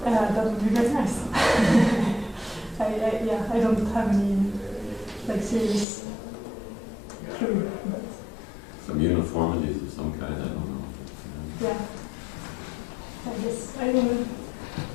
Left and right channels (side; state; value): right; drops out; at 5.9 s